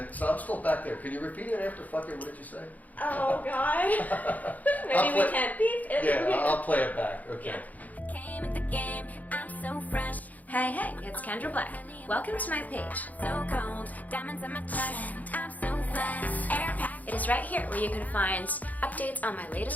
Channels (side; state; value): right; late; 0.078 ms